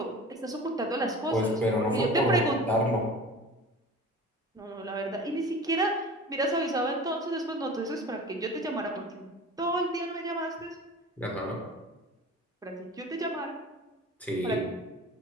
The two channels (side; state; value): both; normal; correlation 0.38